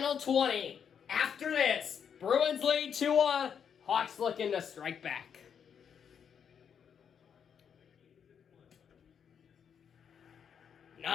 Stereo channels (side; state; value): right; quieter; 7.6 dB